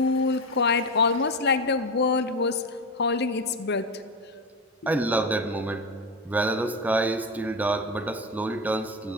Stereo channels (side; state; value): both; normal; correlation 0.17